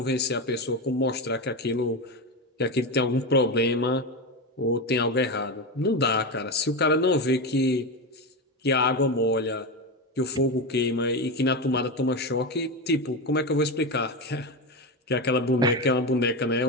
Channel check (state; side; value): normal; both; correlation 0.16